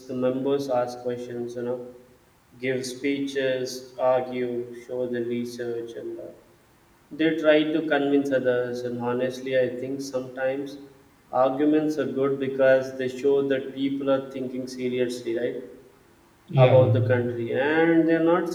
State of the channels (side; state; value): both; identical; correlation 1.00